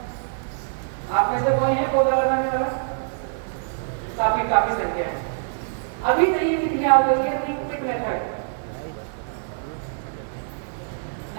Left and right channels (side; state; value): left; silent; digital silence